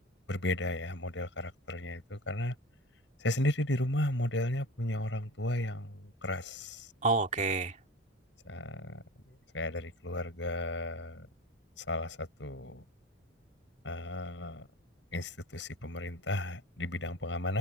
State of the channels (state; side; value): normal; both; correlation 0.35